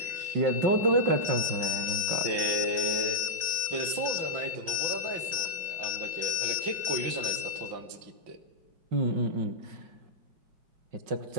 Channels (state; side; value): late; left; 5.8 ms